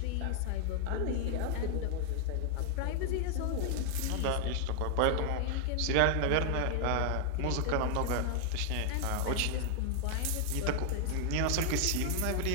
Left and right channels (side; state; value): both; different; correlation 0.00